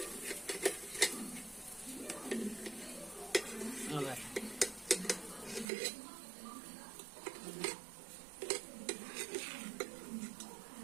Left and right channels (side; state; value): left; drops out; at 5.7 s